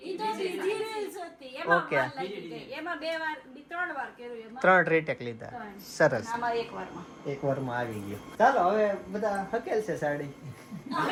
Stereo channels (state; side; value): identical; both; correlation 1.00